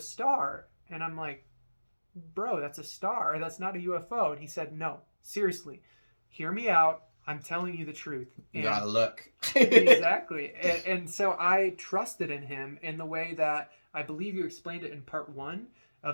and I'm like, "Bro, that's a star. That's not a UFO." And he said, "No, seriously, hear me out. I'm telling you the truth." You gotta look. Exactly. And so I trusted in him in the way that I believe you explained it in part 1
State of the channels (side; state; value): both; inverted; correlation -1.00